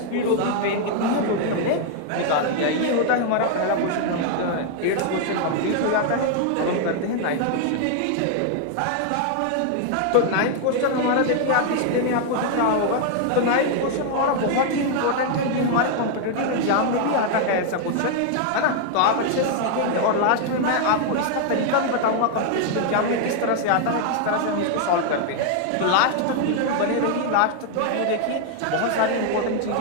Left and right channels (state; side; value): different; both; correlation 0.00